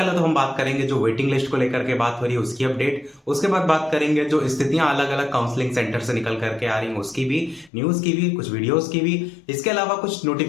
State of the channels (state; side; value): drops out; right; at 7.7 s